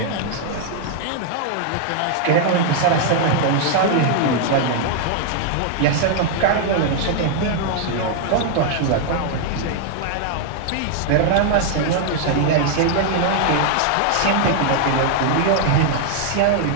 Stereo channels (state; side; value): different; both; correlation 0.00